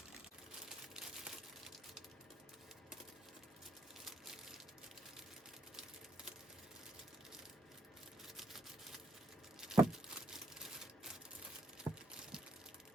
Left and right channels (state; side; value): normal; both; correlation 0.73